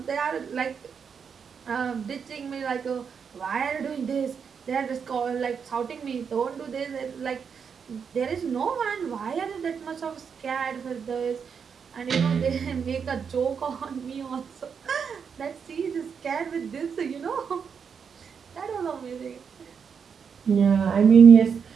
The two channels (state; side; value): quieter; left; 6.6 dB